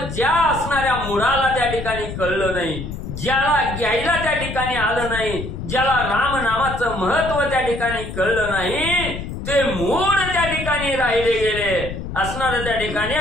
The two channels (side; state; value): left; noise; rumble, 8 dB below the sound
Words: ज्या असणाऱ्या मुळाला त्या ठिकाणी कळलं नाही, ज्याला घ्यायला त्या ठिकाणी आलं नाही, ज्याला रामनामाचं महत्व त्या ठिकाणी कळलं नाही, ते मूळ त्या ठिकाणी राहिले गेले असणार त्या ठिकाणी.